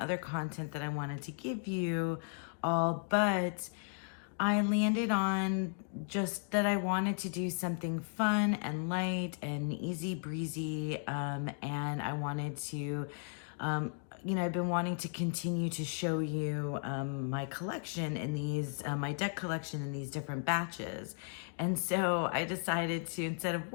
content that I wanted to give you all, but I landed on just that I wanted to do something fun and light and easy breezy, and I wanted to I've been wanting to continue to show you my collection in these, my deck collection in these different batches. And so I decided to, instead of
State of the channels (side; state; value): right; silent; 54 dB below the other